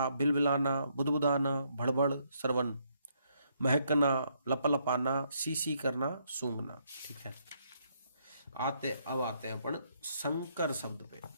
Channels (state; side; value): inverted; both; correlation -0.73